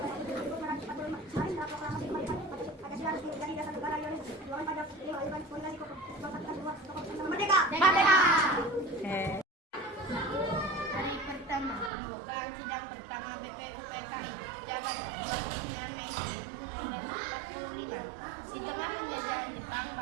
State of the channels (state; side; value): drops out; left; at 11.9 s